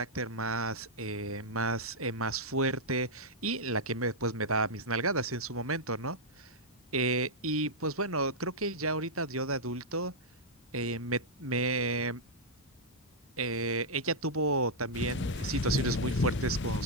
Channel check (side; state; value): both; normal; correlation -0.06